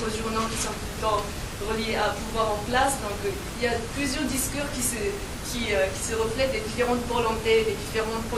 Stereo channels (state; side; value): identical; both; correlation 1.00